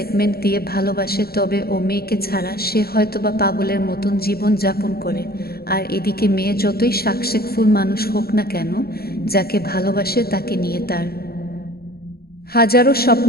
দিয়ে ভালোবাসে, তবে ও মেয়েকে ছাড়া সে হয়তোবা পাগলের মতন জীবন যাপন করে। আর এদিকে মেয়ে যতই সাকসেসফুল মানুষ হোক না কেন, যাকে ভালোবাসে তাকে নিয়ে তার হাজারো স্বপ্ন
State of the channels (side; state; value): right; late; 0.45 ms